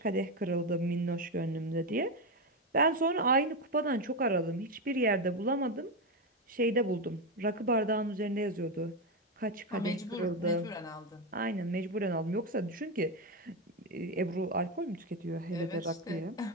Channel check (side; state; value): both; normal; correlation 0.10